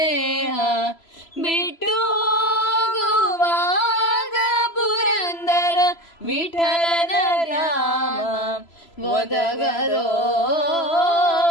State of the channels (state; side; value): late; right; 3.0 ms